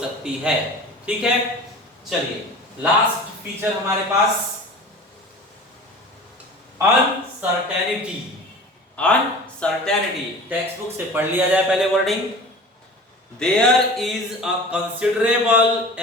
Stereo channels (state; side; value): normal; both; correlation 0.38